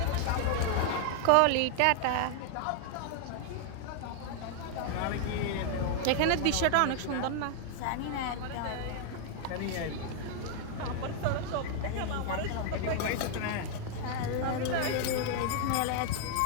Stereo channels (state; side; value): different; both; correlation 0.00